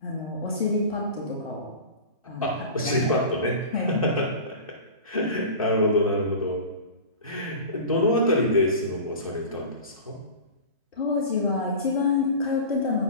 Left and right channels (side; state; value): both; inverted; correlation -0.34